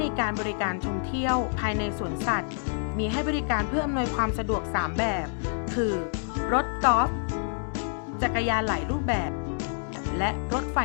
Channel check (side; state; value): right; silent; digital silence